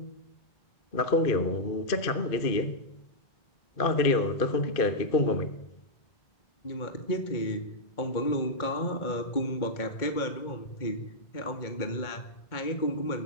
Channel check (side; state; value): right; late; 2.5 ms